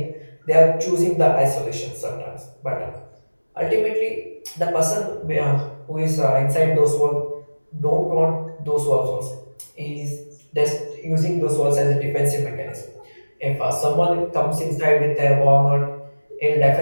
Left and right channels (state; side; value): inverted; both; correlation -1.00